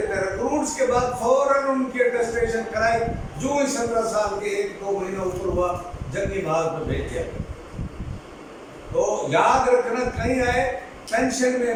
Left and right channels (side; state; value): both; identical; correlation 1.00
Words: थे, रिक्रूट्स के बाद फौरन उनकी अटेस्टेशन कराई, जो ही 17 साल के 1-2 महीना ऊपर हुआ जंगी भाग में भेज दिया। तो याद रखना कहीं आए पेंशन में